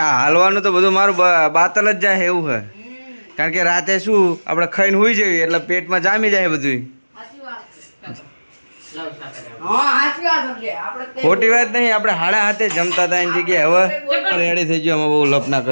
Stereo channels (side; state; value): both; inverted; correlation -1.00